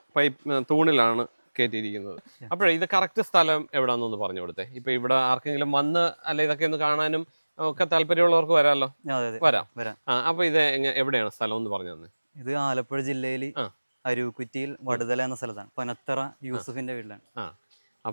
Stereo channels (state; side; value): inverted; both; correlation -1.00